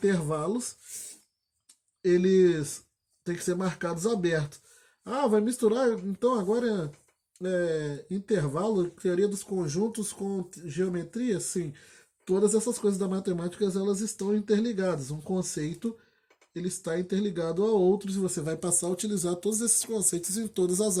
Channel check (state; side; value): identical; both; correlation 1.00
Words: eles têm que ser marcados abertos. Ah, vai misturar, então agora intervalo, teoria dos conjuntos com geometria? Sim. Todas essas coisas da matemática, elas estão interligadas. Um conceito, ele está interligado a outros e você vai passar a utilizar todos esses conceitos em todas as